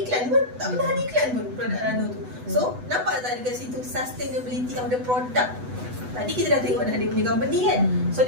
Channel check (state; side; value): late; left; 8.0 ms